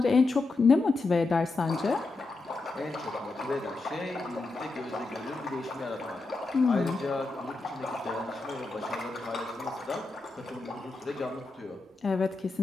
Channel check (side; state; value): right; quieter; 3.5 dB